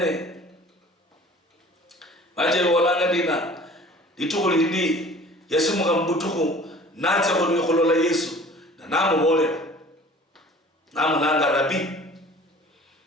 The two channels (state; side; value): normal; both; correlation 0.47